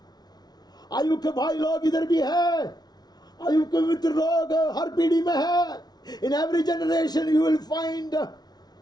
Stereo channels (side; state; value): right; late; 0.19 ms